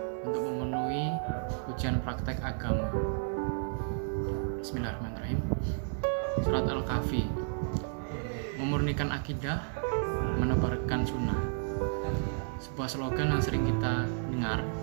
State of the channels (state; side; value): silent; left; 56 dB below the other